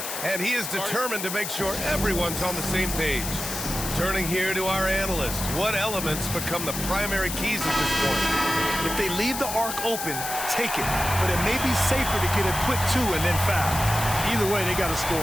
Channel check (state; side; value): noise; left; hiss, 5 dB below the sound